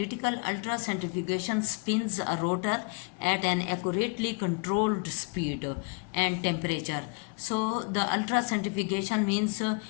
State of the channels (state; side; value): quieter; right; 34.1 dB